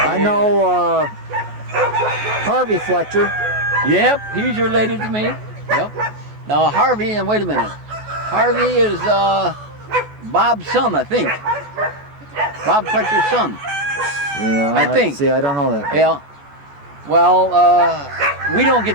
I know Harvey Fletcher. Yep, he's related to me. Yep. Now Harvey, and wait a minute. Harvey is Bob's son, I think. Bob Fletcher's son. Yeah, I think. See, I don't know that. Yeah. Well, we don't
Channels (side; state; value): left; late; 14 ms